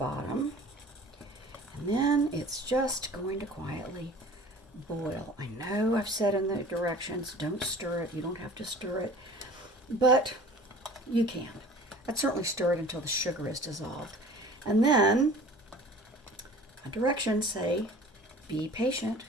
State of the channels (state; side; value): normal; both; correlation 0.44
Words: And then it's just going to quietly boil. I know I've said in the directions, don't stir it. You don't have to stir it, but you can. I'd certainly stir it until the sugar is dissolved. And then my directions say, be patient,